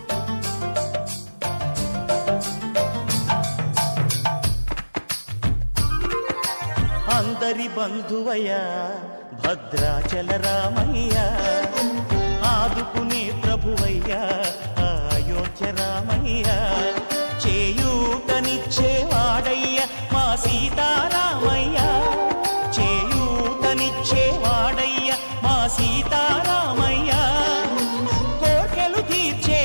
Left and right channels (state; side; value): inverted; both; correlation -1.00